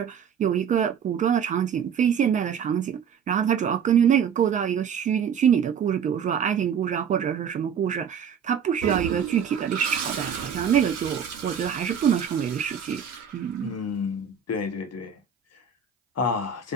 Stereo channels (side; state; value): left; quieter; 7.2 dB